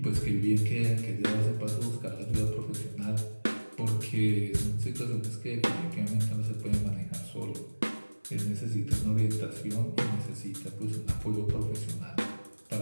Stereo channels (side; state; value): both; inverted; correlation -1.00